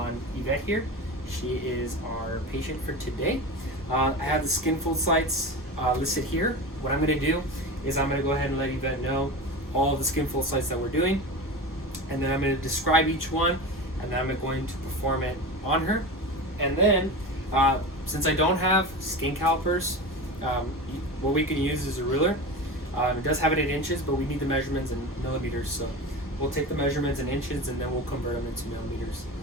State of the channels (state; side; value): normal; both; correlation 0.27